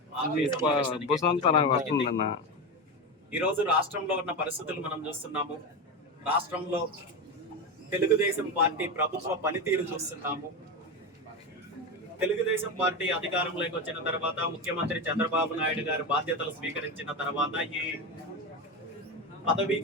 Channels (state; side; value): normal; both; correlation 0.17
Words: ఈరోజు రాష్ట్రంలో ఉన్న పరిస్థితులు మనం చూస్తున్నాము. రాష్ట్రంలో తెలుగుదేశం పార్టీ ప్రభుత్వ పనితీరు చూస్తున్నాము. తెలుగుదేశం పార్టీ అధికారంలోకి వచ్చిన తర్వాత, ముఖ్యమంత్రి చంద్రబాబు నాయుడు గారు బాధ్యతలు స్వీకరించిన తర్వాత ఈ పదవీ